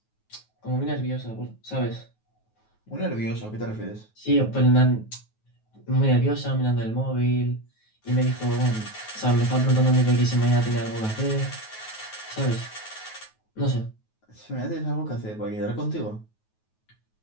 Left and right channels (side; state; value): right; late; 9.3 ms